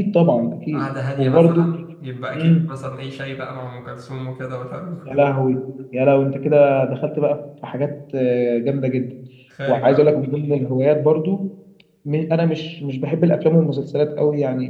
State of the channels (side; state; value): both; identical; correlation 1.00